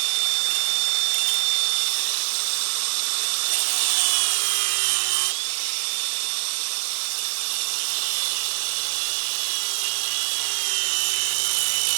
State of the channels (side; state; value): left; silent; digital silence